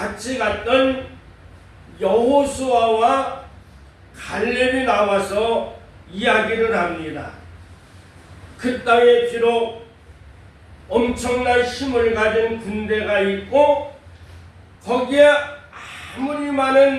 갔던 여호수아와 갈렙이 나와서 이야기를 합니다. 그 땅에 비록 엄청난 힘을 가진 군대가 있고 거기에 아무리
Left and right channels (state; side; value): identical; both; correlation 1.00